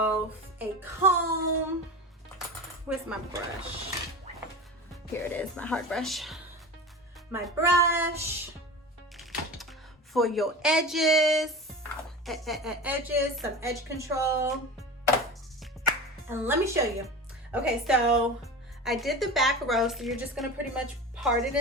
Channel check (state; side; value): normal; both; correlation 0.31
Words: a comb. Where's my brush? Here it is, my hard brush. My brush for your edges, some edge control. And let me show you. Okay, so I did the back row, so you're just gonna pretty much part it